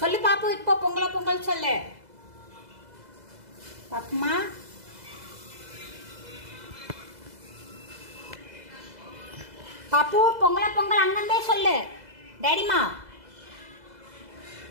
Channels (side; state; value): left; late; 2.0 ms